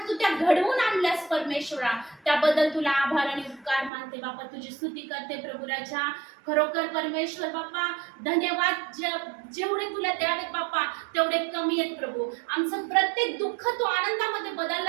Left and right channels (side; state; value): left; drops out; at 3.9 s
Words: तू त्या घडवून आणल्यास परमेश्वरा, त्याबद्दल तुला आभार आणि उपकार मानते बाप्पा. तुझी स्तुती करते प्रभू राजा. खरोखर परमेश्वर बाप्पा धन्यवाद. जेवढे तुला द्यावेत बाप्पा तेवढे कमी आहेत प्रभू. आमचं प्रत्येक दुःख तू आनंदामध्ये